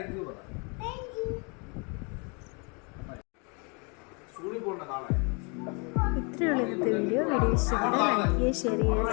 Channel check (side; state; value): right; quieter; 33.5 dB